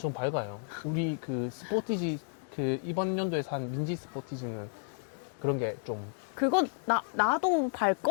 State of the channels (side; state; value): right; silent; 56 dB below the other